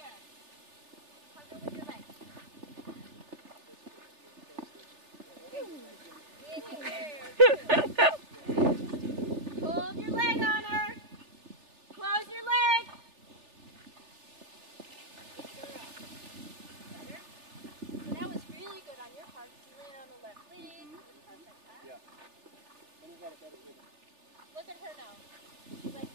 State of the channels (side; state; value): left; late; 3.4 ms